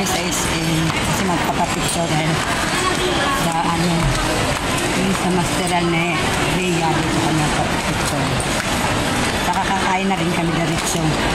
sa SM kasi magpapapicture dahil sa ano yung sa masteral na Rhea. Dito kami magpapapicture. Saka kakain na rin kami diretso.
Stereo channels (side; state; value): both; identical; correlation 1.00